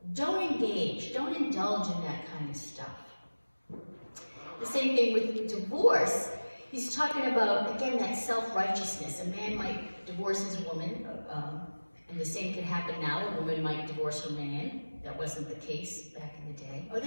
Don't engage, don't indulge in that kind of stuff. The same thing with divorce. He's talking about, again, that self-righteousness. A man might divorce his woman, and the same could happen now. A woman might divorce her man. That wasn't the case back in the day. Or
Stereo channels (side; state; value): both; inverted; correlation -1.00